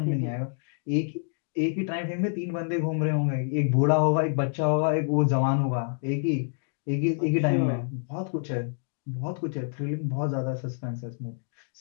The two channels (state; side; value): silent; right; digital silence